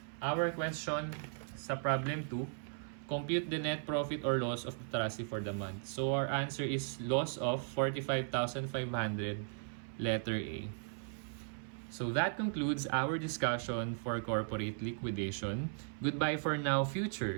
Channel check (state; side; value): silent; left; 53 dB below the other